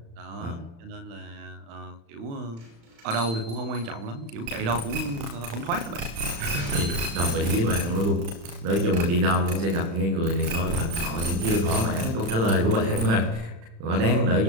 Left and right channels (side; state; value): left; late; 35 ms